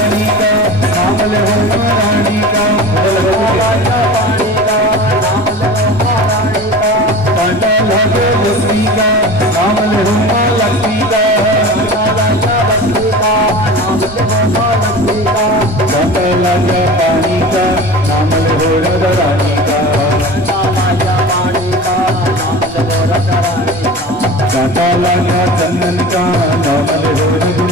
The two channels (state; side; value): normal; both; correlation 0.34